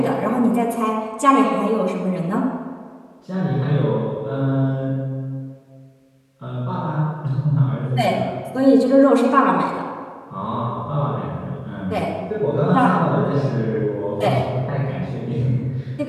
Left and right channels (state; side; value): identical; both; correlation 1.00